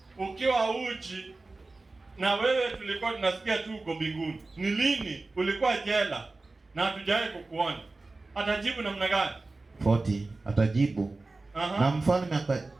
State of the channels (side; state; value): left; quieter; 3.4 dB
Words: ukiwa uchi, na wewe tulikuwa tunasikia tu uko mbinguni. Ni lini ulikuwa jela na hatujawahi kukuona? Atajibu namna gani? 40 atajibu. Na mfalme